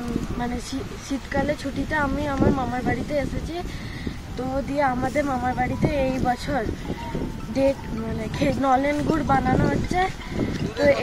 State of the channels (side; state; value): both; identical; correlation 1.00